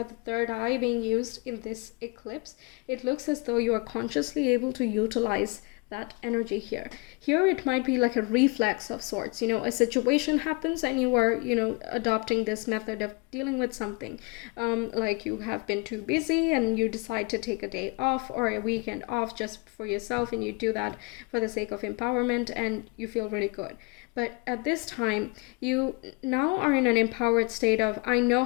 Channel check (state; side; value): quieter; right; 29.1 dB